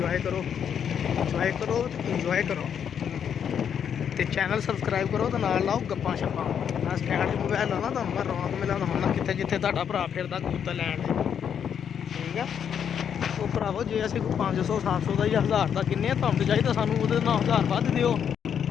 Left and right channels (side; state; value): right; quieter; 8.2 dB